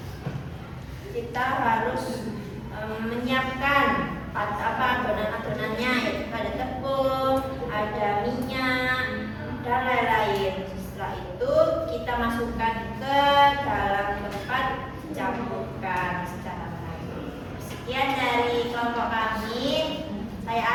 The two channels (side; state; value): both; identical; correlation 1.00